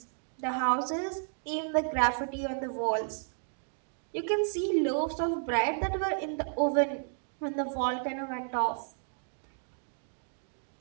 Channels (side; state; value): left; silent; digital silence